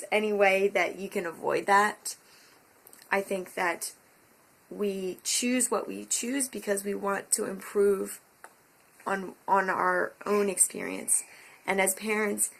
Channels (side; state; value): both; identical; correlation 1.00